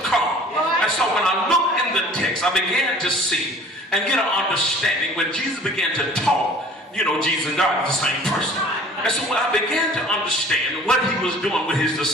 come. And so when I look in the text, I began to see and get an understanding. When Jesus began to talk, Jesus and God are the same person. And so when I began to understand what he was doing with his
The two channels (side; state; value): both; normal; correlation 0.49